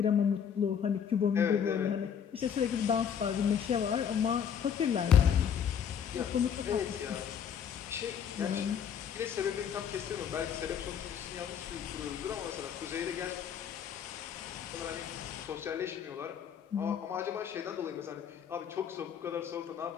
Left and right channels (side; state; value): right; quieter; 8.1 dB